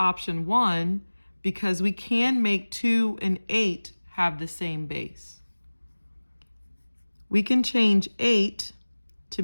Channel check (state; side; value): inverted; both; correlation -1.00